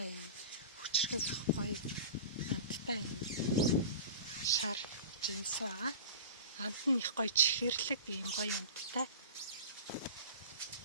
юм. Хүчрхэг гоё амттай юм. Шар жимс байгаа. Амт нь их гоё чихэрлэг ийм гоё амттай.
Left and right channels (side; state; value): both; inverted; correlation -0.35